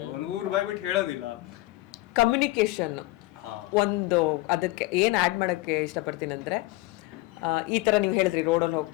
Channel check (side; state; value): right; quieter; 19.6 dB